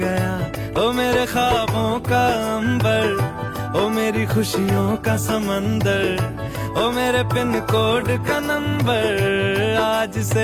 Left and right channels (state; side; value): identical; both; correlation 1.00